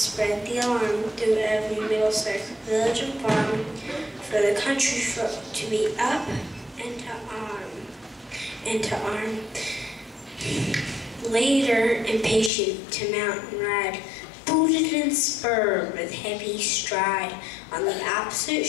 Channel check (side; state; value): right; drops out; at 12.5 s